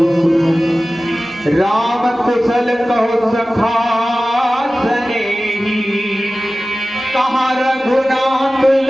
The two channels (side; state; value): both; normal; correlation 0.96